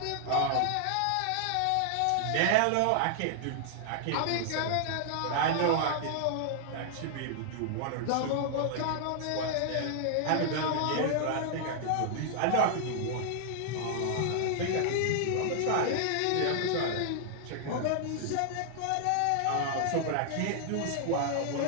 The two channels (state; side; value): different; both; correlation 0.00